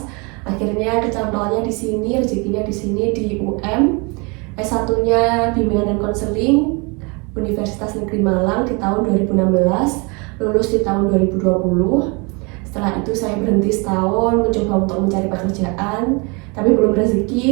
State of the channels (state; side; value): quieter; left; 30.0 dB